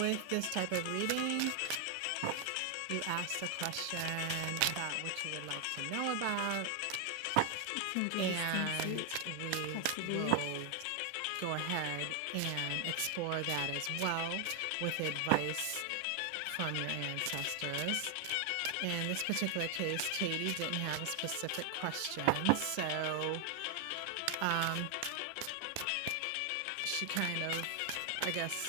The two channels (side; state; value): both; different; correlation 0.00